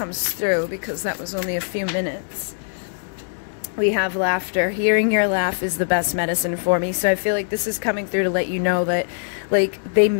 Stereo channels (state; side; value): silent; right; digital silence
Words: through, because that was only a few minutes. We have laughter. Hearing your laugh is the best medicine for me. So I feel like this is coming through to let you know that, like, they